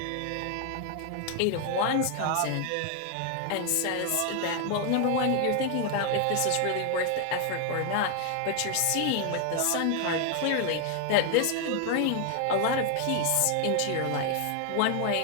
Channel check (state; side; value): different; both; correlation 0.00